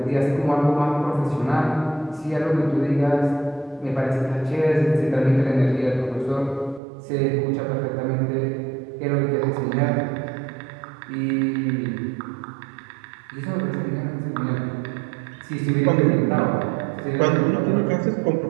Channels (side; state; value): left; drops out; at 6.8 s